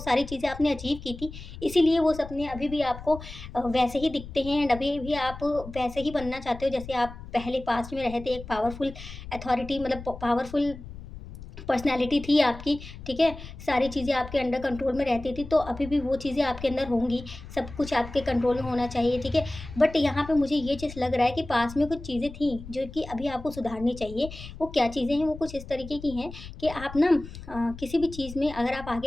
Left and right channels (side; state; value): left; noise; rumble, 13 dB below the sound